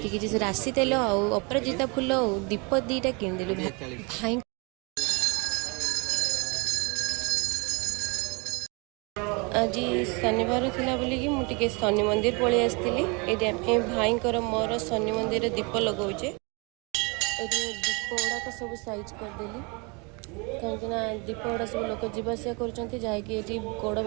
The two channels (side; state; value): left; quieter; 30.4 dB